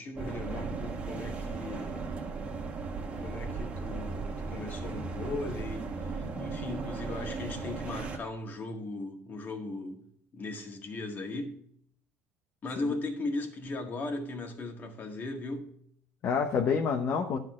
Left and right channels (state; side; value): normal; both; correlation 0.61